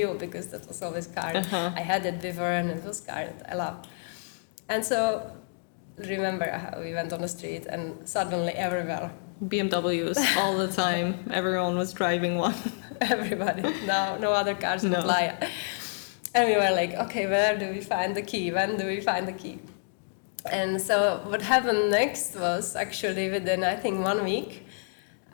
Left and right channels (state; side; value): silent; right; digital silence